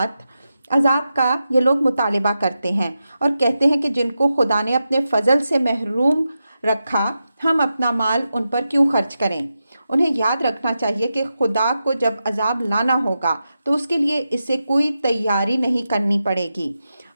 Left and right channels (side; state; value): both; inverted; correlation -0.90